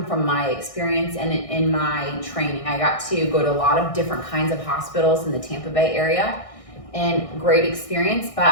from my experience and in my training. I got to go to a lot of different kinds of hospitals in the Tampa Bay area, and great experience. But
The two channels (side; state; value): right; late; 1.6 ms